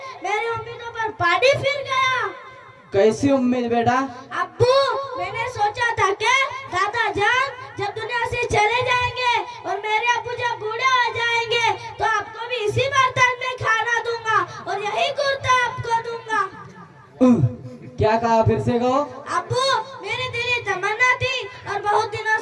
मेरी उम्मीदों पर पानी फिर गया। कैसी उम्मीद बेटा? अब्बू, मैंने सोचा था कि दादा जान जब दुनिया से चले जाएंगे और मेरे अब्बू जब बूढ़े हो जाएंगे तो आपको भी इसी बर्तन में खाना दूंगा और यही कुर्ता आपको दूंगा। क्या कहा? फिर से कहो। अब्बू, मेरी दिली तमन्ना थी और बहुत दिनों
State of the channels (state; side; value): identical; both; correlation 1.00